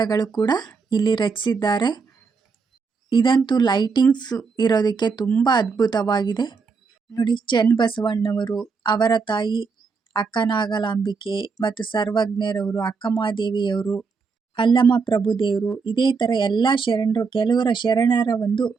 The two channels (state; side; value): quieter; left; 5.0 dB